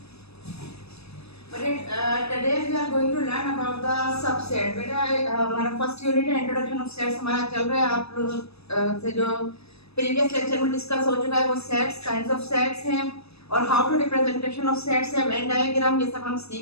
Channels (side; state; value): right; late; 0.78 ms